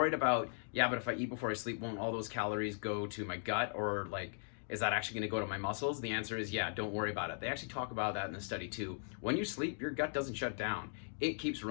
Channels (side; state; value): right; silent; digital silence